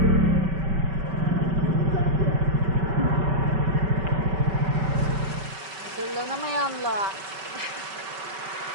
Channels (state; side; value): late; left; 5.2 ms